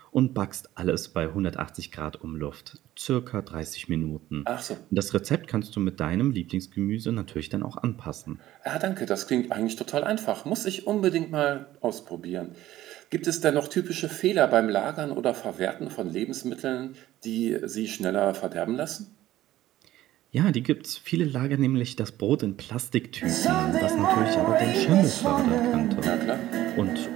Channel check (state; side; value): quieter; left; 14.6 dB